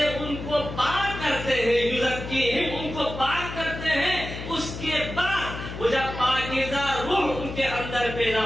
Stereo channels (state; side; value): noise; left; hum, 9 dB below the sound